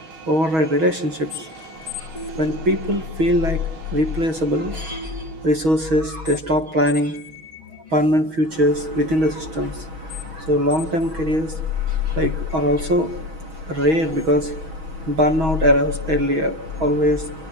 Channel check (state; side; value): late; left; 6.3 ms